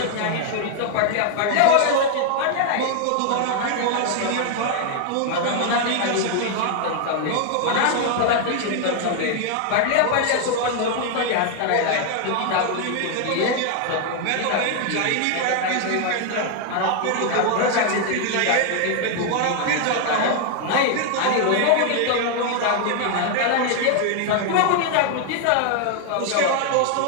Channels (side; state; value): both; different; correlation 0.00